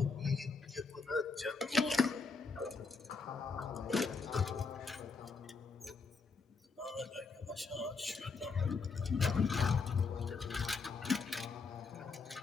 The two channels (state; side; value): quieter; right; 4.6 dB